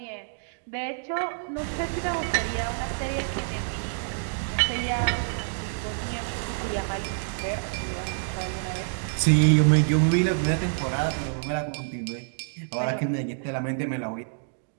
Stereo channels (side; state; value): left; silent; digital silence